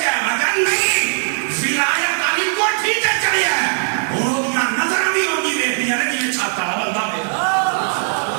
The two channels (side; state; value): left; silent; 58 dB below the other